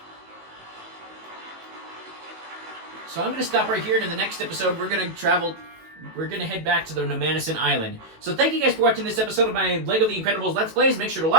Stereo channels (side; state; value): left; late; 18 ms